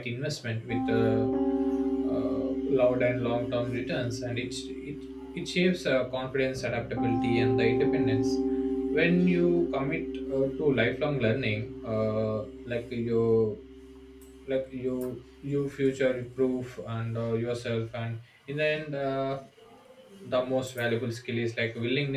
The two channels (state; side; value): identical; both; correlation 1.00